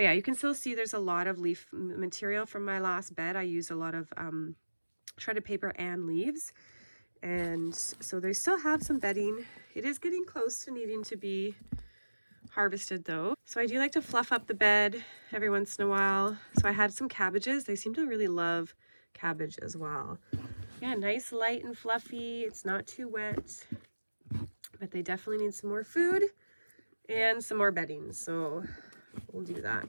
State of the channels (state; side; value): inverted; both; correlation -1.00